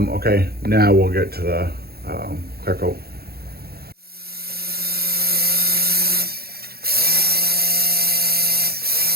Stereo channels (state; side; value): late; left; 0.45 ms